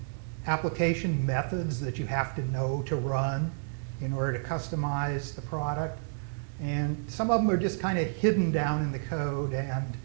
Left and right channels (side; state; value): left; silent; 58 dB below the other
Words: application methods that you have to know to run in order to customize the product. And some of them are just kind of hidden down in the code, and